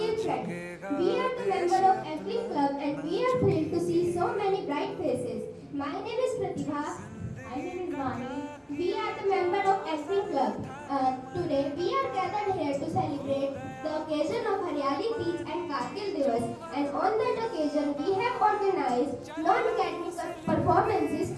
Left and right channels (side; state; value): both; identical; correlation 1.00